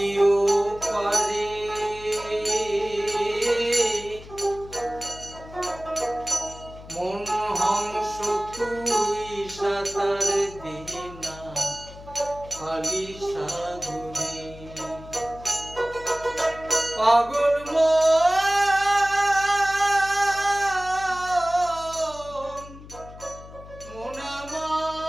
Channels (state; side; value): noise; left; hum, 17 dB below the sound